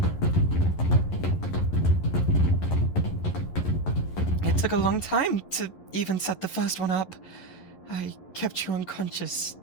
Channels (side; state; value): right; late; 11 ms